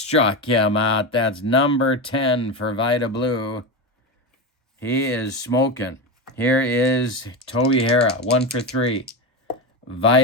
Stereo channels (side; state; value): both; normal; correlation 0.18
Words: him out. That's number 10 for Vida Blue. He is smoking. Here is Toby Harrah, 1 for 3.